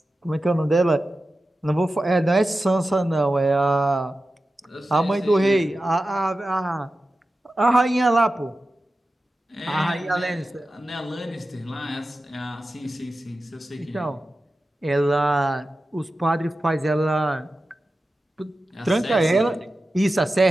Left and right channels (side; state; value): both; normal; correlation 0.93